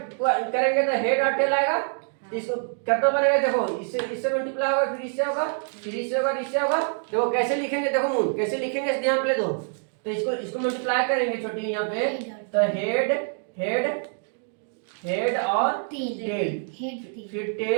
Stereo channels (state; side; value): silent; left; 61 dB below the other